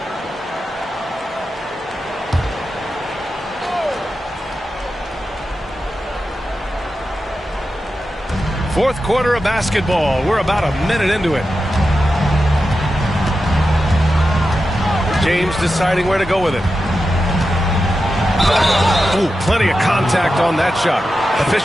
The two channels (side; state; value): both; normal; correlation 0.91